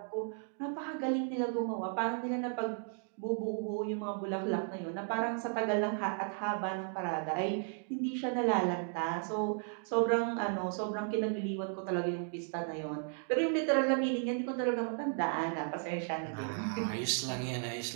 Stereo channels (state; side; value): silent; left; 55 dB below the other